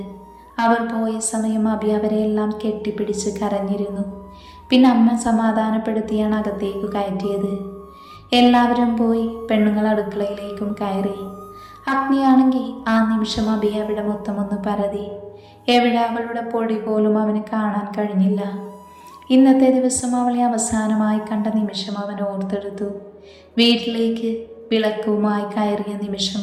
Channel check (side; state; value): both; identical; correlation 1.00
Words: അവർ പോയ സമയം അഭി അവരെയെല്ലാം കെട്ടിപ്പിടിച്ച് കരഞ്ഞിരുന്നു. പിന്നെ അമ്മ സമാധാനപ്പെടുത്തിയാണ് അകത്തേക്ക് കയറ്റിയത്. എല്ലാവരും പോയി പെണ്ണുങ്ങൾ അടുക്കളയിലേക്കും കയറി. അഗ്നിയാണെങ്കിൽ ആ നിമിഷം അഭിയെ അവിടെ മൊത്തമൊന്ന് പരതി. എവിടെ അവളുടെ പൊടി പോലും അവന് കാണാൻ കഴിഞ്ഞില്ല. ഇന്നത്തെ ദിവസം അവളെ അവസാനമായി കണ്ട നിമിഷം അവൻ ഓർത്തെടുത്തു. വീട്ടിലേക്ക് വിളക്കുമായി കയറിയ നിമിഷം